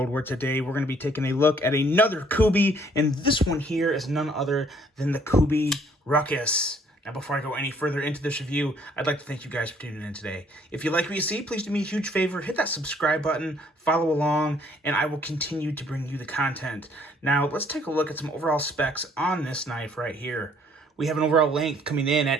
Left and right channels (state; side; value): normal; both; correlation 0.62